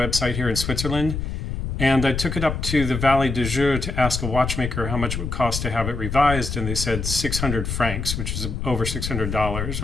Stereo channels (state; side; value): noise; left; rumble, 4 dB below the sound